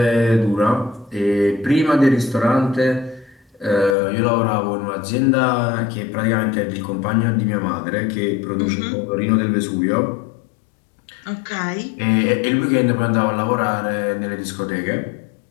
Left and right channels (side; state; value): right; drops out; at 4.0 s